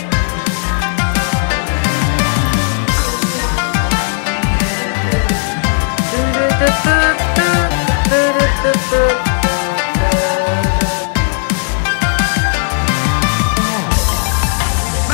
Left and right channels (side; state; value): right; silent; digital silence